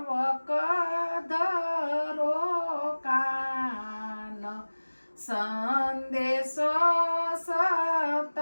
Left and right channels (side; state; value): both; inverted; correlation -1.00